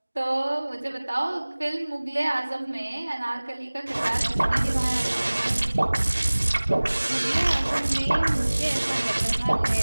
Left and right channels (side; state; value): both; inverted; correlation -1.00